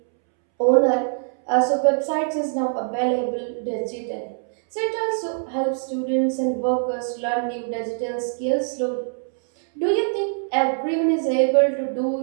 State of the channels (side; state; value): left; silent; 63 dB below the other